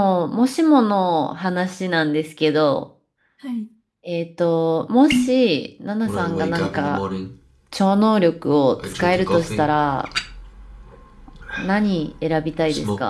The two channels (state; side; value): identical; both; correlation 1.00